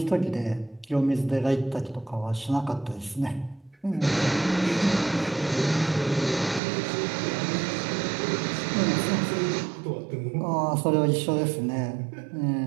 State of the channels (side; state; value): left; drops out; at 6.6 s